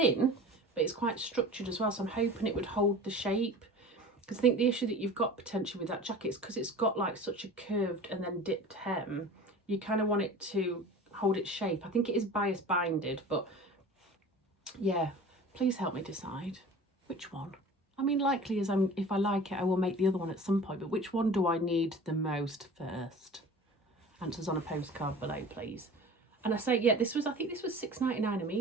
but it's quite structured as well. So I'm hoping it would hold the shape. Because I think the issue that you've got potentially with that jacket is because it's got like such a curved and then dipped hem, you kind of want it to hold its shape. I think it is bias binded, but yeah, please help me decide which one. I mean, likely as if I like it, I will make the other one at some point, but which one do I need the most first? Answers on a postcard below, please. And I say, yeah, I think this was £6.99 a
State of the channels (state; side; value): normal; both; correlation 0.39